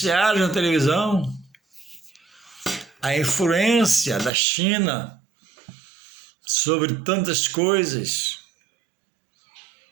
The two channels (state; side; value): drops out; left; at 4.3 s